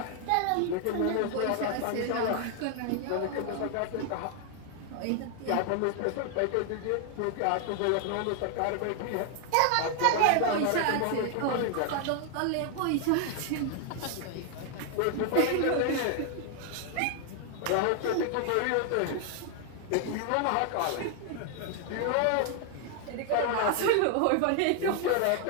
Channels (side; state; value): both; different; correlation 0.00